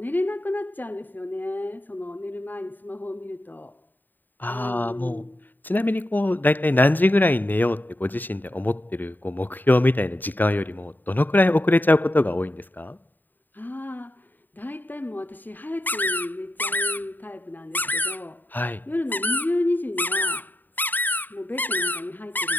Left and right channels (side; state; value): right; late; 0.089 ms